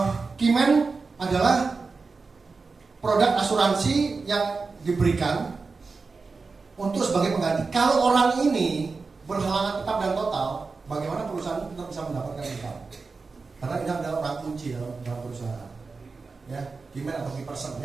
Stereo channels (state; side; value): quieter; left; 4.3 dB